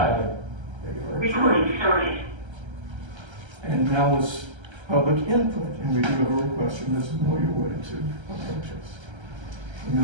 Recording started. And now is public input, and we do have a request from Ms. Amelia Wood to approach us.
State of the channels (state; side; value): late; left; 1.3 ms